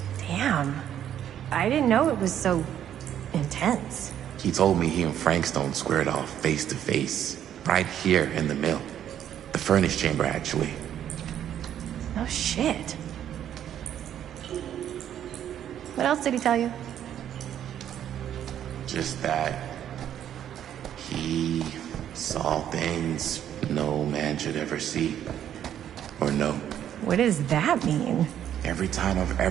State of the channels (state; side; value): quieter; left; 10.3 dB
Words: Damn. I didn't know it was so intense. He told me he and Frank Stone squared off face to face, right here in the mill. The furnace chamber, actually. Oh, shit. What else did he tell you? Just that he saw things no man should ever see or know. What does that mean? Every time I've